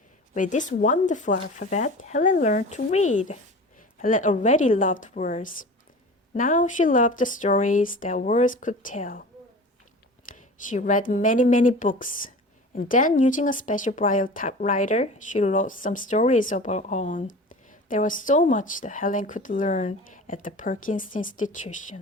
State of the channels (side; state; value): both; normal; correlation 0.37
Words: With this wonderful alphabet, Helen learned to read. Helen already loved words. Now she loved the stories that words could tell. She read many books, and then using a special Braille typewriter, she wrote some stories of her own. There was so much that Helen could learn at the Perkins